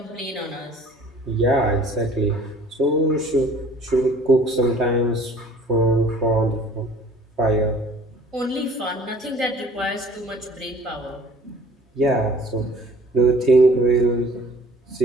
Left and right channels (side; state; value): both; normal; correlation 0.52